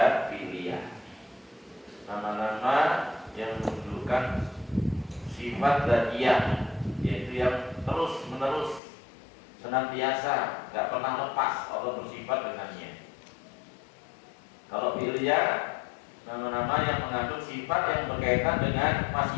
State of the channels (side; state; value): right; drops out; at 8.8 s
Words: fi'liyah. Nama-nama yang menunjukkan sifat dzatiyah, yaitu yang terus menerus, senantiasa, nggak pernah lepas Allah bersifat dengannya. Kalau fi'liyah, nama-nama yang mengandung sifat yang berkaitan dengan